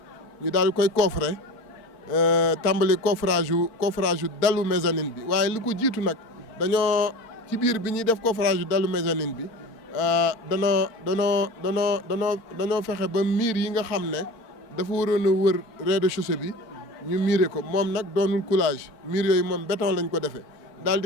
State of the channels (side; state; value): right; late; 4.4 ms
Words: ñu daal koy coffrer tàmbali coffrage yu dalu mezzanine bi waaye li ko jiitu nag dañoo ci biir bi ñuy def coffrage yu dalu mezzanine bi danoo fexe ba miir yi nga xam ne dafa waroon a wër rez-de-chaussée bi ñu miire ko moom nag doonul coulage miir yooyu moom béton lañ ko defee daal